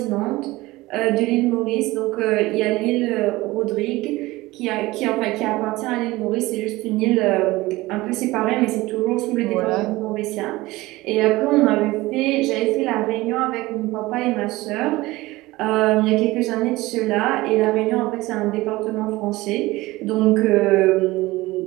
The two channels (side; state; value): left; quieter; 19.6 dB